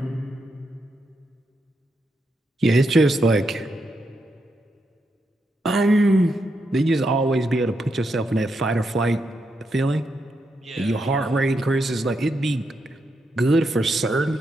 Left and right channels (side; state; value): both; normal; correlation 0.82